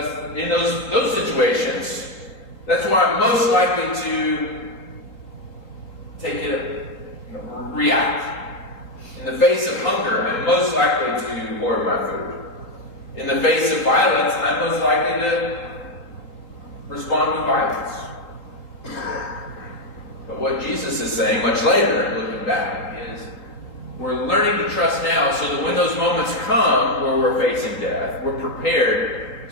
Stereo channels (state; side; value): late; right; 3.8 ms